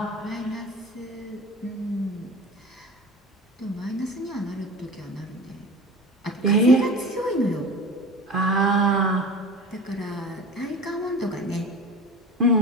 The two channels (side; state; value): both; normal; correlation 0.33